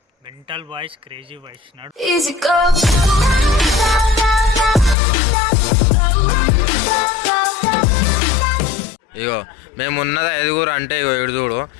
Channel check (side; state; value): right; drops out; at 5.0 s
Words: మెంటల్ బాయ్స్ క్రేజీ బాయ్స్ ఇగో మేము ఉన్నది 5 అంటే ఇగో చూడు,